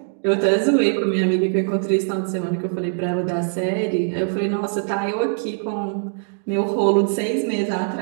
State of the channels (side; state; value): left; silent; digital silence